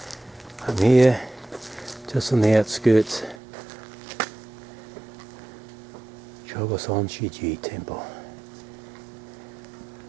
I'm here, just on the outskirts, Ikoma-sanke Temple.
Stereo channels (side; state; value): left; drops out; at 3.4 s